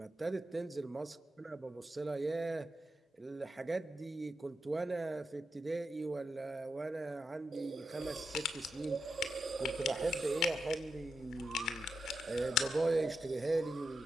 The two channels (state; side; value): normal; both; correlation 0.87